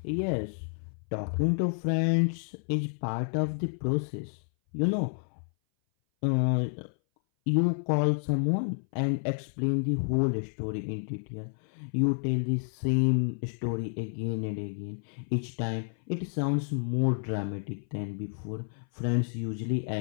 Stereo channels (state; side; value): silent; right; 58 dB below the other